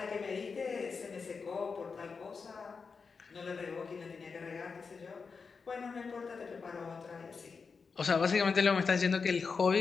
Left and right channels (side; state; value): right; quieter; 5.1 dB